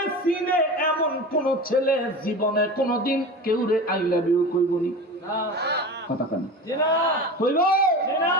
সিনে এমন কোন ছেলে জীবনে কোনদিন কেউ রে আই লাভ ইউ কইবনি। কথা কেন কইব?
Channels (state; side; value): normal; both; correlation 0.31